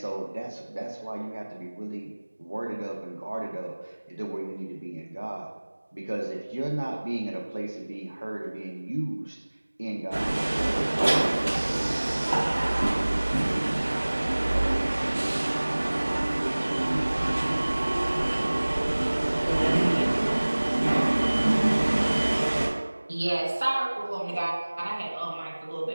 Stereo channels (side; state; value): both; inverted; correlation -1.00